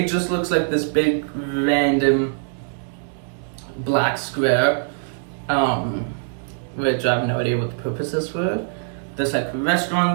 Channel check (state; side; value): silent; left; digital silence